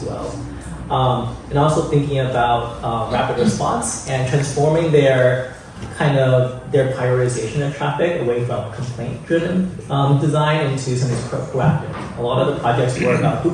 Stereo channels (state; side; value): identical; both; correlation 1.00